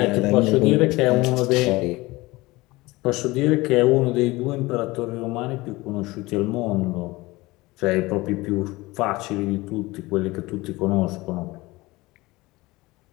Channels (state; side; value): quieter; right; 21.1 dB